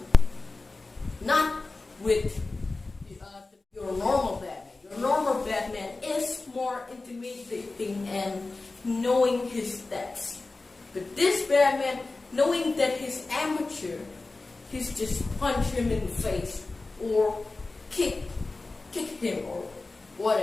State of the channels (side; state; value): right; quieter; 3.4 dB